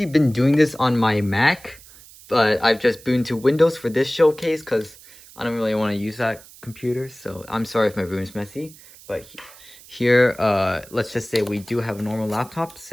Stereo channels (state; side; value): noise; right; hiss, 21 dB below the sound